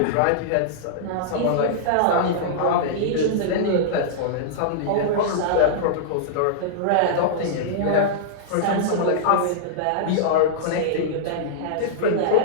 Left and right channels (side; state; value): both; different; correlation -0.02